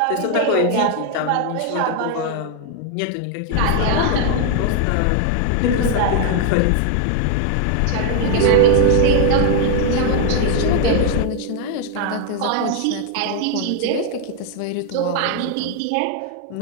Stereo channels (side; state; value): both; different; correlation 0.00